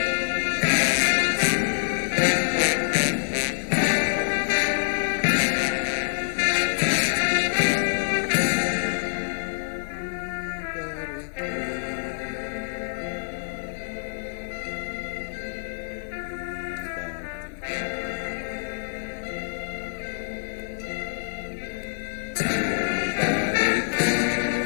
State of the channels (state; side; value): silent; right; digital silence